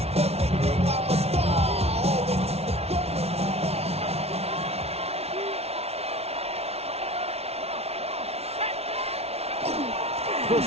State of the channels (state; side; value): late; left; 0.30 ms